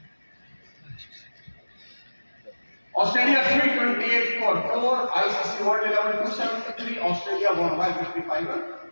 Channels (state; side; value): inverted; both; correlation -1.00